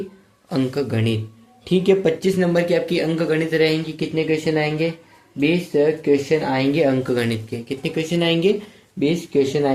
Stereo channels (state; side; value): identical; both; correlation 1.00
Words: अंक गणित। ठीक है, 25 नंबर की आपकी अंक गणित रहेंगी। कितने क्वेश्चन आएंगे? 20 क्वेश्चन आएंगे अंक गणित के। कितने क्वेश्चन आएंगे? 20 क्वेश्चन